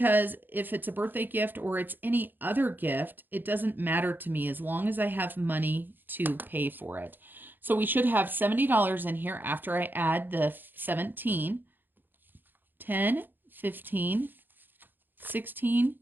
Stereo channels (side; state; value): left; late; 0.092 ms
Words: if it's a birthday gift or it's any other gift, it doesn't matter to me as long as I have money to pay for it. So we should have $70 in here after I add the 17, 10, 15, 16,